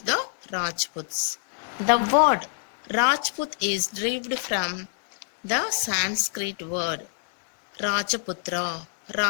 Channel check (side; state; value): right; silent; digital silence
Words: the Rajputs. The word Rajput is derived from the Sanskrit word Rajaputra.